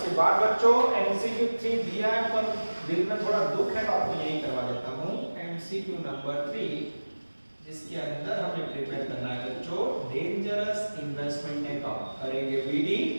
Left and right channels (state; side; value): inverted; both; correlation -1.00